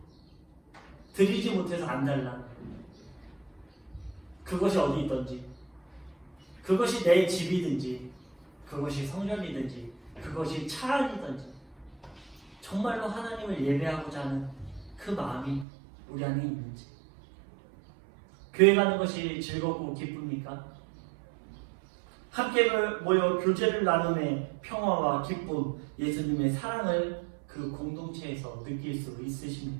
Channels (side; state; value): left; drops out; at 15.7 s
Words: 드리지 못해서 안달나. 그것이 어디 있든지, 그것이 내 집이든지, 그것이 성전이든지, 그것이 차 안이든지 정말로 하나님을 예배하고자 하는 그 마음이 우리 안에 있는지. 교회 가는 것이 즐겁고 기쁩니까? 함께 모여 교제를 나눔의 평화와 기쁨, 예수님의 사랑을 그 공동체에서 느낄 수